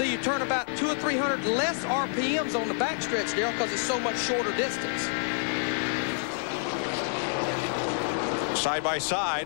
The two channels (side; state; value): right; silent; 59 dB below the other